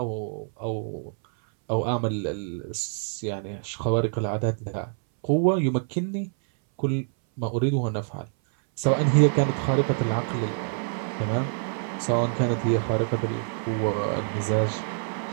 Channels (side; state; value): left; silent; 61 dB below the other